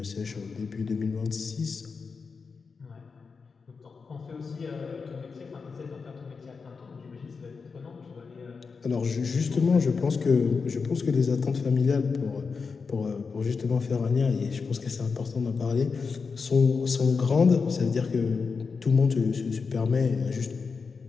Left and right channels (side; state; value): right; quieter; 5.0 dB